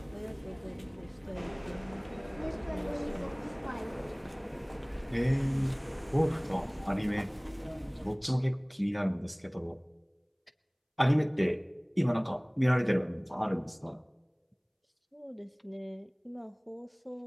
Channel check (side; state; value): both; identical; correlation 1.00